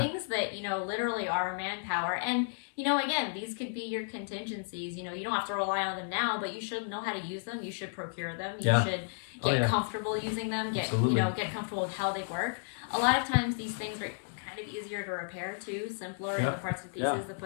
that literally are manpower. And again, these could be your contingencies. You don't have to rely on them now, but you should know how to use them. You should procure them. You should get comfortable using them. Get comfortable with how they work. A lot of times these things are kind of easier to repair too, simpler in the parts and pieces to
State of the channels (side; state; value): right; silent; digital silence